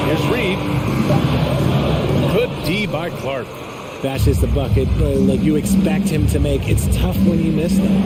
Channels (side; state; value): both; identical; correlation 1.00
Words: Here's Reed. Good D by Clark. That's just a bucket like you expect him to make. It's tough when you miss